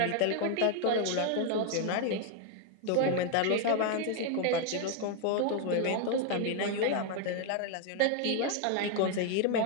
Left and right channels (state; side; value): different; both; correlation 0.01